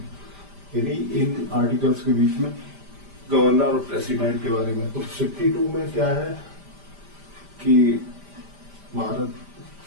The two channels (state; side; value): late; left; 5.0 ms